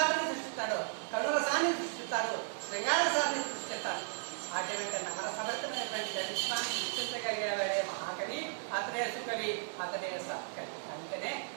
సృష్టిస్తాడు, కరుణరసాన్ని సృష్టిస్తాడు, శృంగారసాన్ని సృష్టిస్తాడు. అటువంటి నవరసభరితమైనటువంటి చరిత్రాన్ని సృష్టించగలిగేవాడే మహాకవి, అతడే సుకవి, అతడే సత్కవి. అందుకనే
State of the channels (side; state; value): left; silent; 54 dB below the other